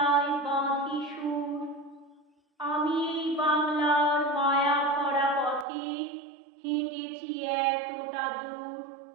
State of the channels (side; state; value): left; drops out; at 5.7 s